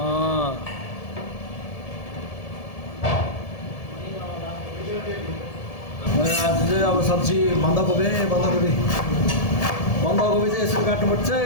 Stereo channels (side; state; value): right; late; 1.7 ms